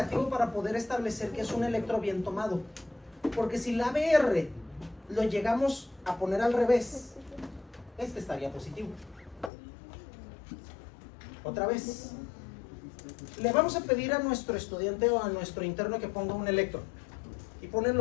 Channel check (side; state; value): right; drops out; at 9.5 s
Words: para poder establecer que es un electro bien tomado. Porque si la ABR lo llegamos a poner al revés, este estaría positivo. Otra vez. Le vamos a pedir a nuestro estudiante o a nuestro interno que ponga un electro. Y ponen